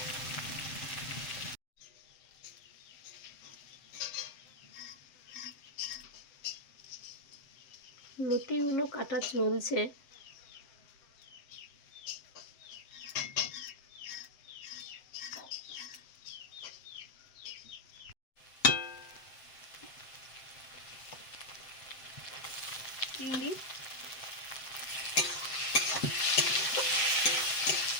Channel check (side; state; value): right; late; 7.8 ms